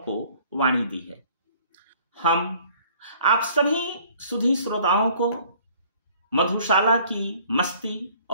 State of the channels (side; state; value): both; inverted; correlation -0.55